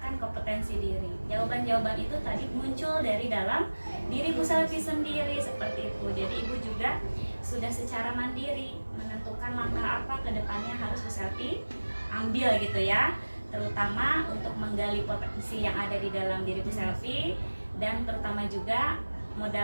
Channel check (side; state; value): both; inverted; correlation -1.00